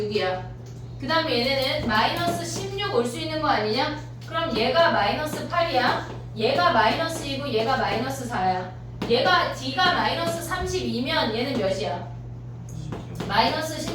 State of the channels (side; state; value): both; identical; correlation 1.00